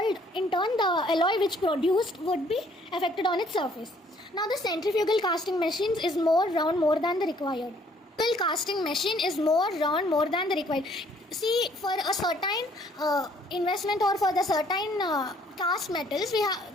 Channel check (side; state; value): both; normal; correlation 0.62